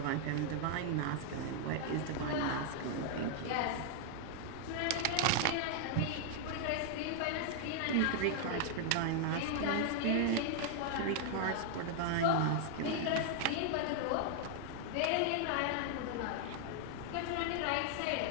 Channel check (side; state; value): both; different; correlation 0.00